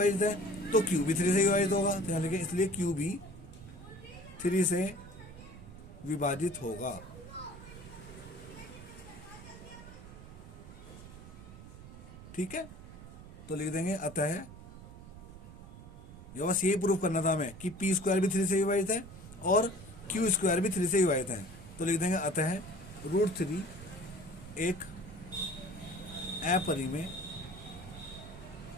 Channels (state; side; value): noise; right; rumble, 15 dB below the sound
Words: है तो Q भी 3 से विभाजित होगा, तो यानी कि इसलिए Q भी 3 से विभाजित होगा। ठीक है, तो लिख देंगे अतः, ये बस यही प्रूफ करना था हमें कि P स्क्वायर भी 3 से विभाजित है और Q स्क्वायर भी 3 से विभाजित है। तो लिख देंगे अतः √3 एक अपरिमेय